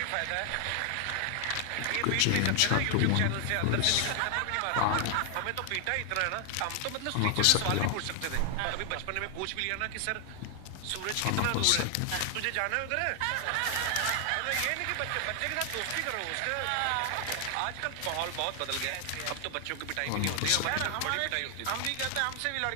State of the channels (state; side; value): different; both; correlation 0.00